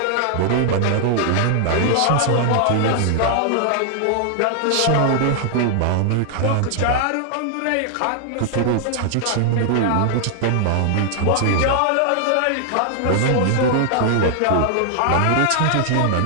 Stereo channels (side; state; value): both; different; correlation 0.00